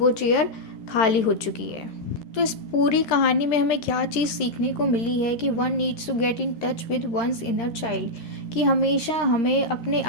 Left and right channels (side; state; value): right; late; 13 ms